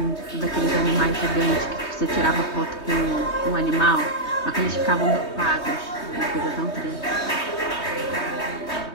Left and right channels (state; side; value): late; right; 3.2 ms